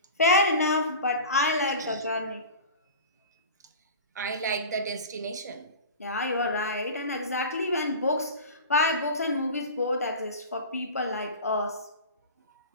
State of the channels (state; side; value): inverted; both; correlation -0.34